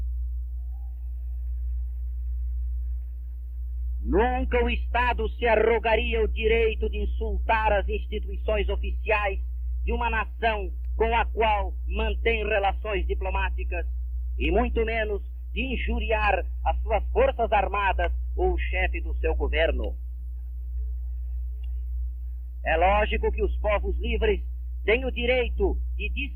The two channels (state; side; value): identical; both; correlation 1.00